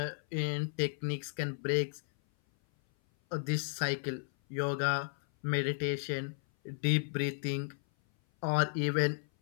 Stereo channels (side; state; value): right; silent; 55 dB below the other